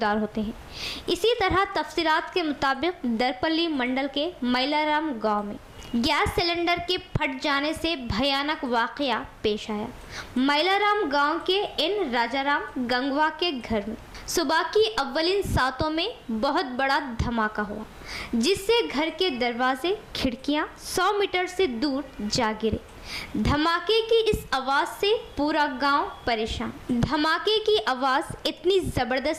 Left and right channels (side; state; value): both; identical; correlation 1.00